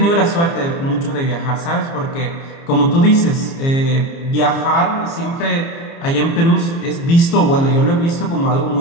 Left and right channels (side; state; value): right; late; 30 ms